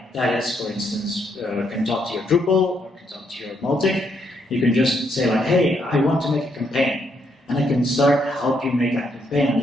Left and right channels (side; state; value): both; normal; correlation 0.75